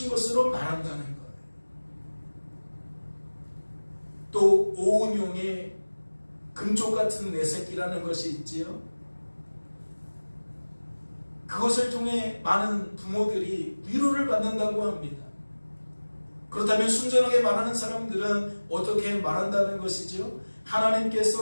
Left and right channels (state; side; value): inverted; both; correlation -1.00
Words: 것으로 말한다는 거예요. 또 오은용의 금쪽 같은 내 새끼라는 것이 있지요. 그것을 통해 많은 부모들이 위로를 받는다고 합니다. 그렇다면 순전하게 말하는 사람들은 어떻게 말한다는 것이죠?